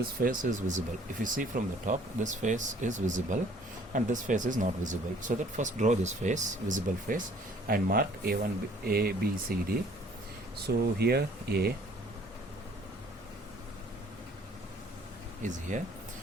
face is visible. If you see from the top, this face is visible and this face is not visible. So that first draw this face, visible face, and mark A1, A, B, C, D. So here A is here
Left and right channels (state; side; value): normal; both; correlation 0.57